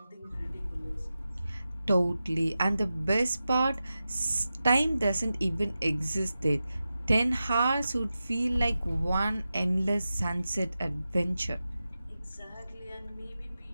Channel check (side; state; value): both; inverted; correlation -0.93